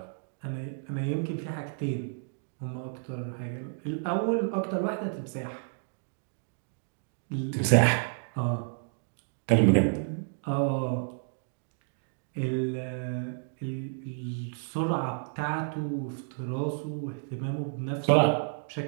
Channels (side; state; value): left; silent; digital silence